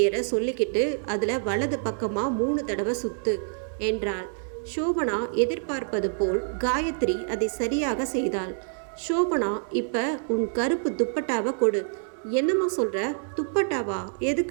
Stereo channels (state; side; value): silent; left; 60 dB below the other